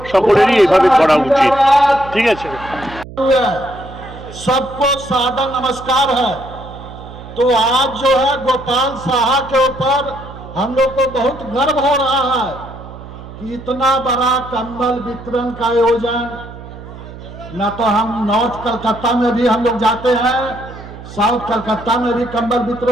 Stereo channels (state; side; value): noise; right; hum, 15 dB below the sound